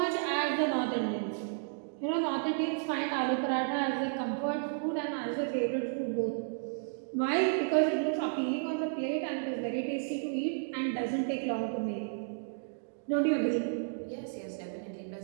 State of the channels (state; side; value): silent; left; digital silence